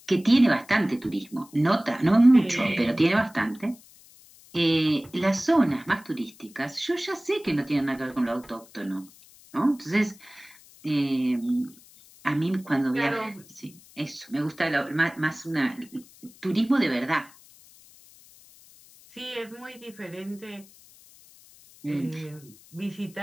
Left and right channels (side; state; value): left; noise; hiss, 24 dB below the sound